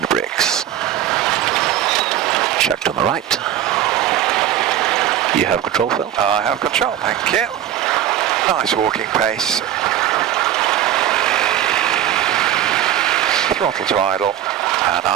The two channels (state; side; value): quieter; left; 11.3 dB